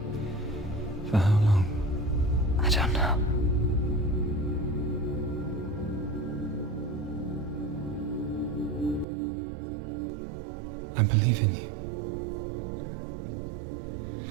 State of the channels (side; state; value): left; drops out; at 9.1 s